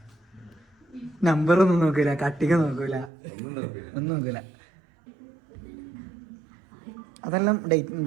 നമ്പറൊന്നും നോക്കൂല, കട്ടിക നോക്കൂല, ഒന്നും നോക്കൂല. അതെല്ലാം ഡേറ്റ്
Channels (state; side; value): drops out; left; at 3.1 s